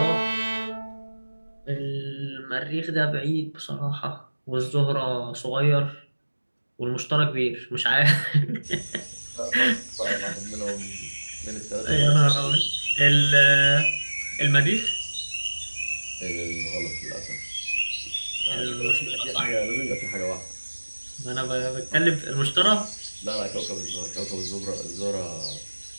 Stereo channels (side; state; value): both; inverted; correlation -1.00